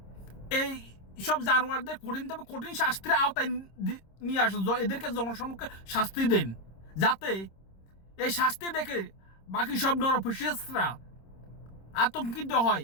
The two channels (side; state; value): right; late; 26 ms